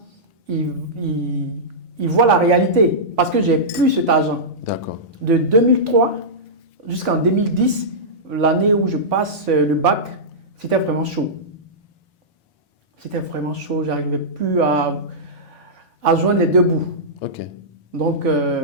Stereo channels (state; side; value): normal; both; correlation -0.14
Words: il voit la réalité parce que j'ai plus cet argent. D'accord. De 2003 jusqu'en 2010, l'année où je passe le bac, c'était vraiment chaud. C'était vraiment chaud, j'arrivais plus à joindre les deux bouts. Ok. Donc,